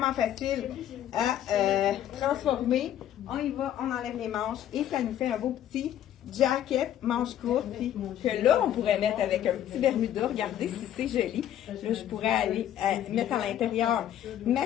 facile à transformer. On y va, on enlève les manches et ça nous fait un beau petit jacket, manche courte, puis que là, on pourrait mettre avec un petit Bermuda. Regardez si c'est joli. Là, je pourrais aller mettre à l'intérieur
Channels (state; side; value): quieter; right; 11.2 dB